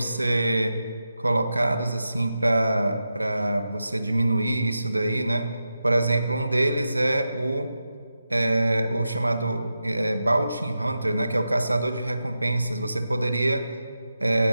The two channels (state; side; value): inverted; both; correlation -0.90